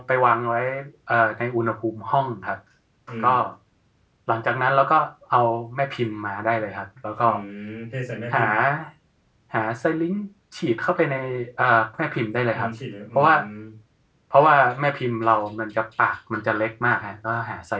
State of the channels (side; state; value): both; identical; correlation 1.00